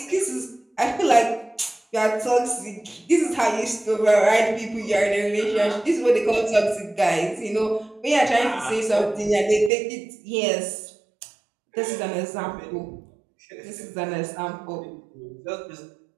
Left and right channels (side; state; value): left; drops out; at 9.7 s